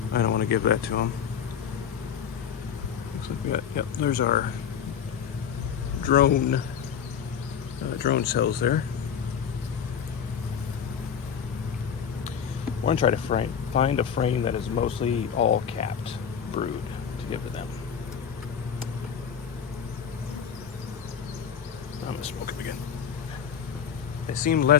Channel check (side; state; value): right; quieter; 7.8 dB